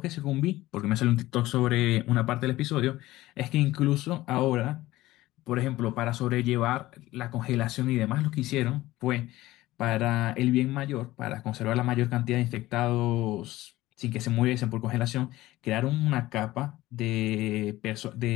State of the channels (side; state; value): right; quieter; 17.1 dB